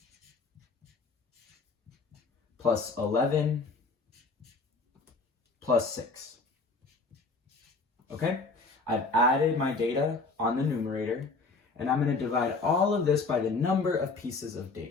plus 11 plus 6. Okay? I've added my data on the numerator, and I'm going to divide all of this by the number of pieces of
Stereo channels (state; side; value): quieter; right; 3.9 dB